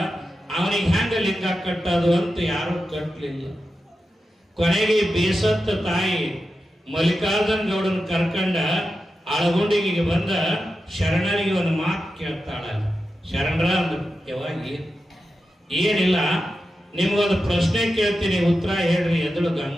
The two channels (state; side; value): normal; both; correlation 0.90